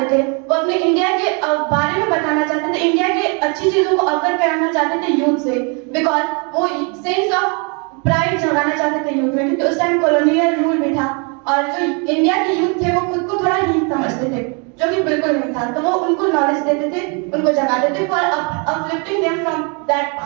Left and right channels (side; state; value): left; quieter; 34.8 dB